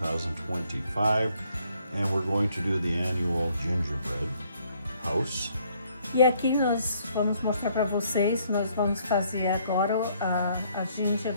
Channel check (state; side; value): inverted; both; correlation -0.67